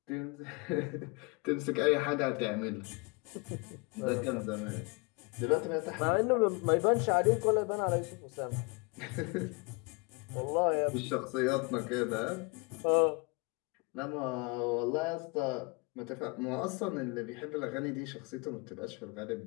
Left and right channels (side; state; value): right; quieter; 29.1 dB